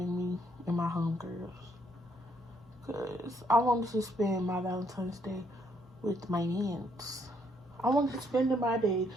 me and my homegirls. Because I wanted to spend my Valentine's Day with my mans. I wanted to spend my day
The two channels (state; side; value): normal; both; correlation 0.71